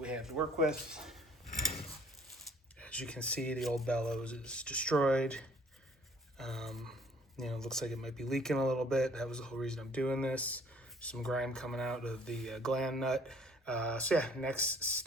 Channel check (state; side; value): normal; both; correlation 0.58